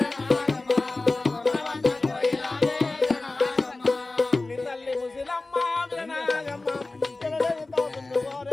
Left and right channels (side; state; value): right; quieter; 3.3 dB